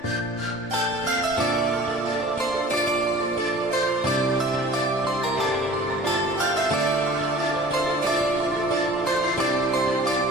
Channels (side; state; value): both; normal; correlation 0.45